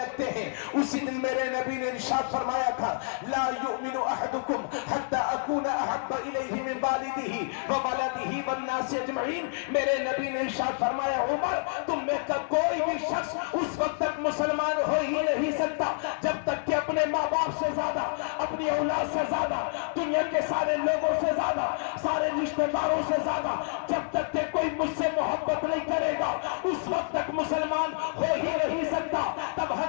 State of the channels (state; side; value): silent; right; digital silence